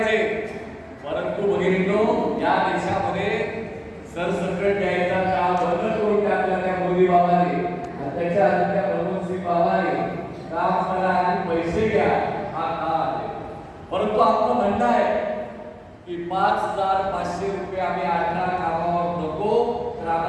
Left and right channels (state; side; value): identical; both; correlation 1.00